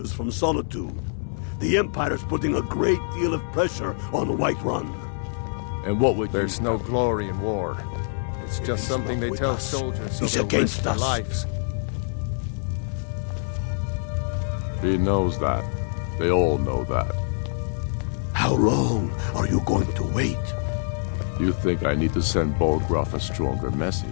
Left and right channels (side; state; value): right; silent; 56 dB below the other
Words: from Solitude. The Empire's putting a great deal of pressure on Whiterun. And what would There's no glory in war. It's just something they tell soldiers so they'll risk their lives. He knows that. They all know that. How long are you going to wait? You think I need to send Balgruuf a stronger